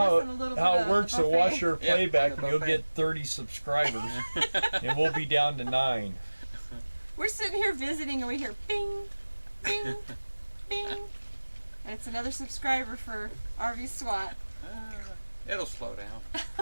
than a little how bit it of works the to buffet. watch your Yeah, playback, the and you'll buffet. get 30 subscribers, and we'll be down to 9. We're sitting here visiting and we hear bing, bing, bing. And it's another subscriber for RV SWAT. It'll slow down.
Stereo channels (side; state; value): both; inverted; correlation -1.00